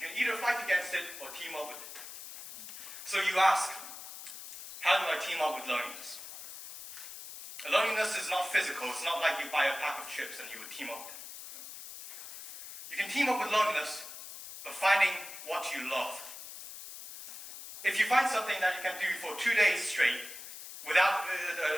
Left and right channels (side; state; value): left; noise; hiss, 12 dB below the sound